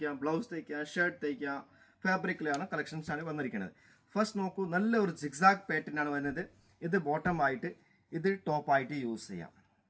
ബ്ലൗസ് തയ്ക്കാം, ഷർട്ട് തയ്ക്കാം, ഫാബ്രിക്കിലാണ് കളക്ഷൻസ് ആണ് വന്നിരിക്കുന്നത്. ഫസ്റ്റ് നോക്കൂ, നല്ല ഒരു സിക്സാക് പാറ്റേൺ ആണ് വരുന്നത്. ഇത് ബോട്ടം ആയിട്ട്, ഇത് ടോപ്പ് ആയിട്ട് യൂസ് ചെയ്യാം.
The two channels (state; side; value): identical; both; correlation 1.00